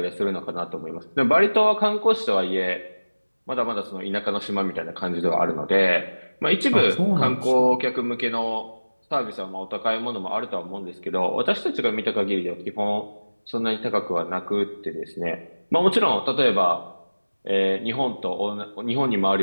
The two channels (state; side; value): inverted; both; correlation -1.00